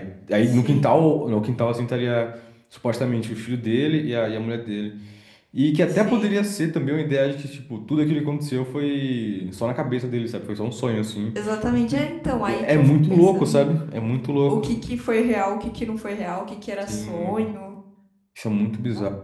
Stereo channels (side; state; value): both; identical; correlation 1.00